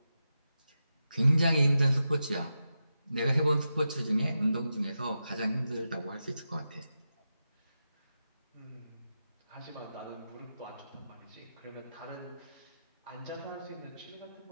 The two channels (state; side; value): inverted; both; correlation -0.89